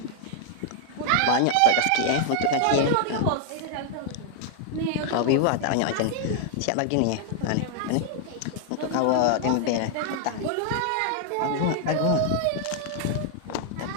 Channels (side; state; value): both; different; correlation 0.00